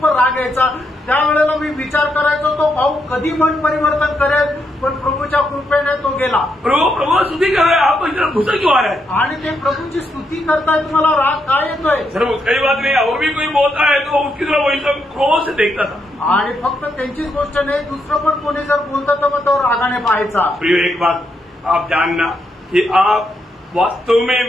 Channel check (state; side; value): normal; both; correlation 0.80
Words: राग यायचा. त्यावेळेला मी विचार करायचो तो भाऊ कधी मन परिवर्तन करेल, पण प्रभूच्या कृपेने तो गेला. प्रभु स्तुति कर रहे हैं, आपको इतना गुस्सा क्यों आ रहा है? आणि ते प्रभूची स्तुती करताय, तुम्हाला राग काय येतोय? सर कई बात नहीं, और भी कोई बोलता है तो उसकी तरफ वही सब क्रोध से देखता था. आणि फक्त त्यांचीच गोष्ट नाही, दुसरं पण कोणी जर बोलतं तर मग तो रागाने पाहायचा. प्रिय एक बात आप जानना कि आप वास्तव